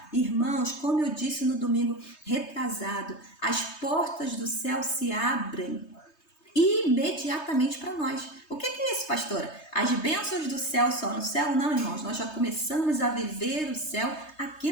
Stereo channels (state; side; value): late; right; 3.2 ms